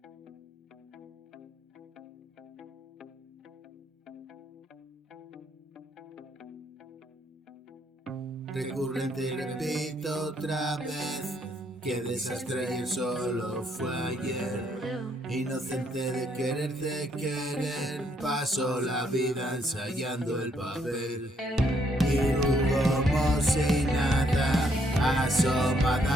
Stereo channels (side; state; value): both; normal; correlation 0.71